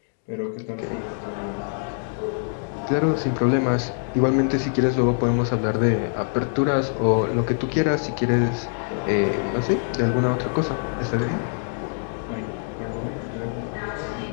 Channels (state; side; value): silent; right; digital silence